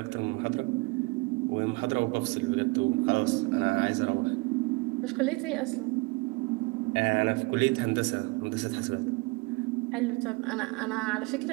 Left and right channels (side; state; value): left; quieter; 25.4 dB